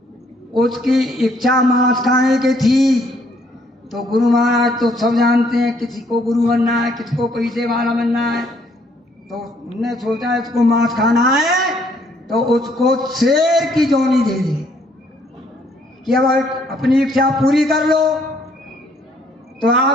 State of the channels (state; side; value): normal; both; correlation 0.66